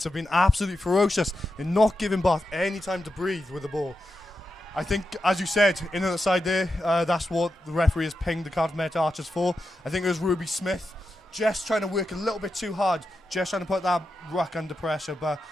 have been absolutely ferocious. They're not giving Bath any time to breathe with the ball. I think, as you said, in on the side there, that's what the referee has pinged the Cardiff Met Archers for. I think it was Ruby Smith just trying to work a little bit too hard, just trying to put that ruck under pressure. But,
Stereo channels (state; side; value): normal; both; correlation 0.88